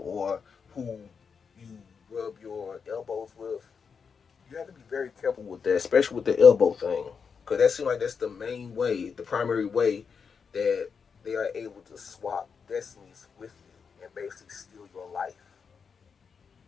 who you rub your elbows with. You have to be very careful with that, especially with the elbow thing, because that seems like that's the main way, the primary way that they are able to swap destinies with you and basically steal your life.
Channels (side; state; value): right; quieter; 6.0 dB